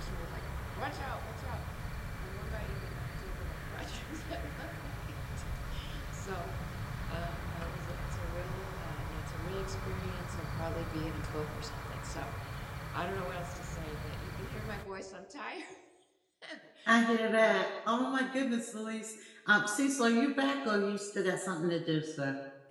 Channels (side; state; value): both; identical; correlation 1.00